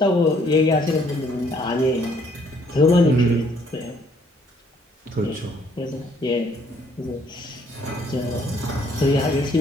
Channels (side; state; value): both; normal; correlation 0.64